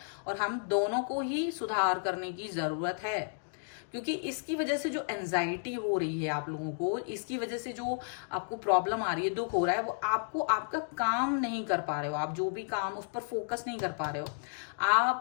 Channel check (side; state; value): right; silent; digital silence